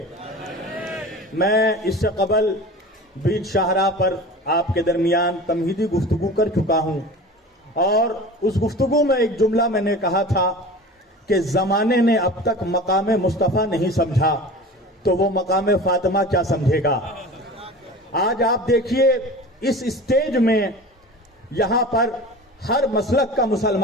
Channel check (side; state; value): both; normal; correlation 0.36